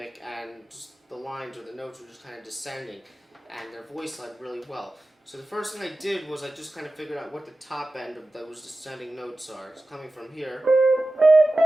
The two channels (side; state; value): both; normal; correlation 0.95